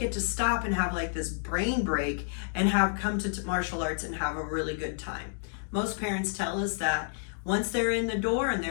to stop and have like this brain break and have come to martial arts and have a really good time. Most parents tell us that once they're in the door and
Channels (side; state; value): right; silent; digital silence